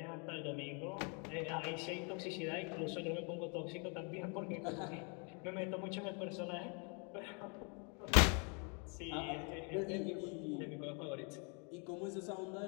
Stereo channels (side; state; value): right; quieter; 36.0 dB